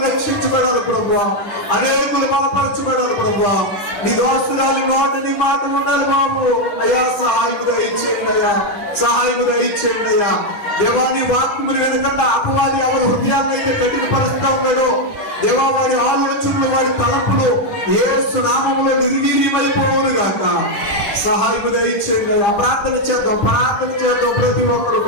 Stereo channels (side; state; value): right; late; 9.9 ms